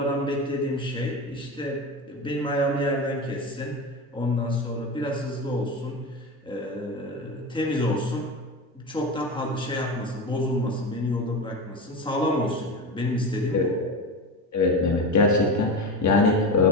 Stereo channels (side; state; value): both; normal; correlation 0.23